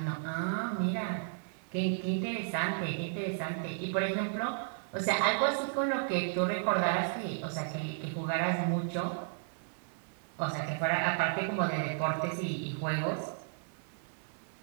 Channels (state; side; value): silent; left; digital silence